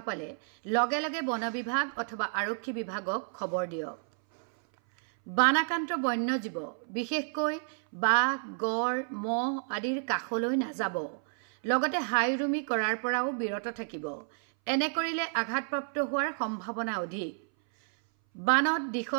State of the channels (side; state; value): left; silent; 57 dB below the other